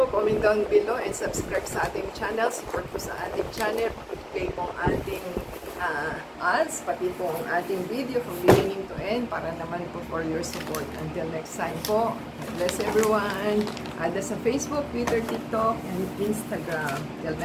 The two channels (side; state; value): both; identical; correlation 1.00